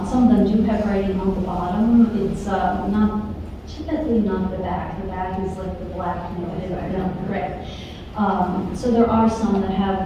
them do have writing on the bottom. It's not typically not the back. The back is like the black, correct. So there are some that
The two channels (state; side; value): identical; both; correlation 1.00